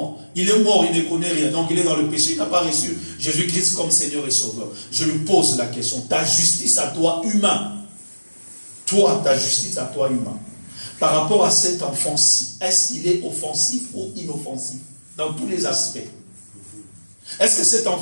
Il est mort, il ne connaît rien. Donc il est dans le péché, il n'a pas reçu Jésus-Christ comme Seigneur et Sauveur. Je lui pose la question, ta justice à toi humain, toi, ta justice à toi humain, par rapport à cet enfant-ci, est-ce qu'il est offensif ou inoffensif? Dans tous les aspects. Est-ce que cet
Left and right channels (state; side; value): inverted; both; correlation -1.00